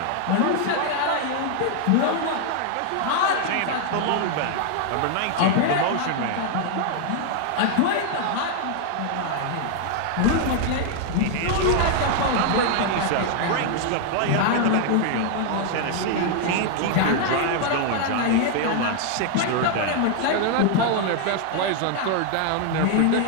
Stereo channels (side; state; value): both; different; correlation 0.00